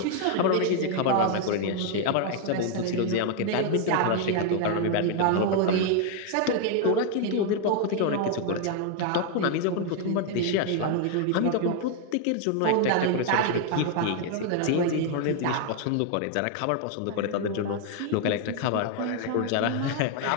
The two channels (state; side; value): different; both; correlation 0.00